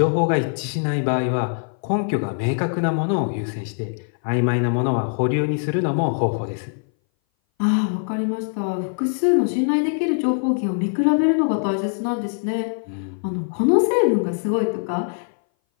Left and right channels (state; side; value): silent; right; 59 dB below the other